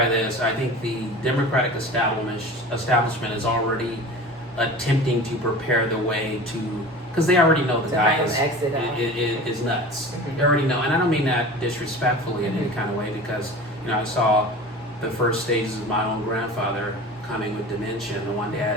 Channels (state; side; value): normal; both; correlation 0.37